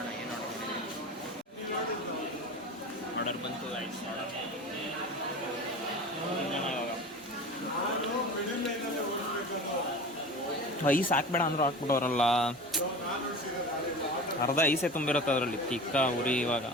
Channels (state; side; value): normal; both; correlation 0.34